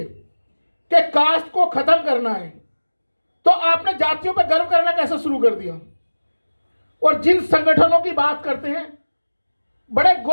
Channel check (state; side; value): inverted; both; correlation -1.00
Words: कि कास्ट को खत्म करना है, तो आपने जातियों पर गर्व करना कैसे शुरू कर दिया। और जिन संगठनों की बात करते हैं बड़े